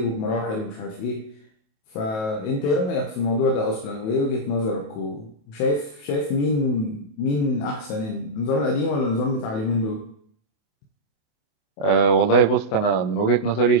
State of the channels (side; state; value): right; late; 28 ms